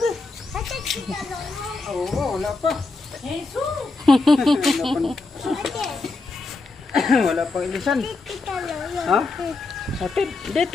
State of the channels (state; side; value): quieter; right; 3.6 dB